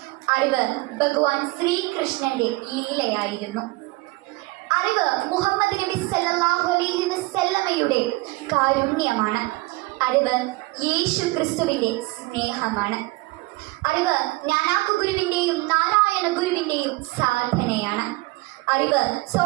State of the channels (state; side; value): quieter; left; 22.2 dB